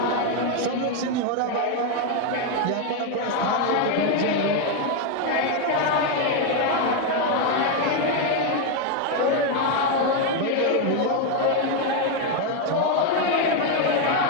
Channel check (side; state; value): both; different; correlation 0.02